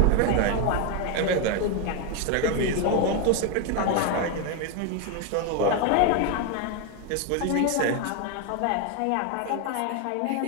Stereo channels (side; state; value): both; different; correlation 0.01